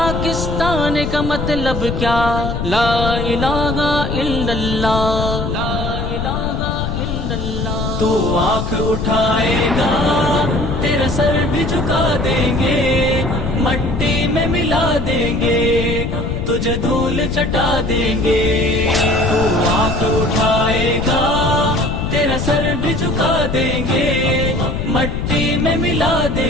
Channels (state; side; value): noise; left; rumble, 3 dB below the sound